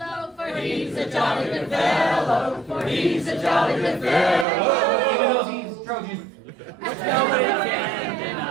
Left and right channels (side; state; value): left; drops out; at 4.5 s